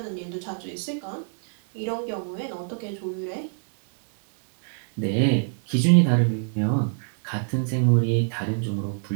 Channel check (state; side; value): silent; left; 62 dB below the other